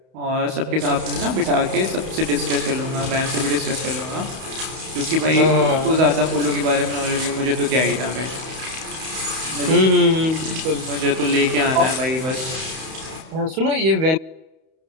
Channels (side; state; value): left; late; 31 ms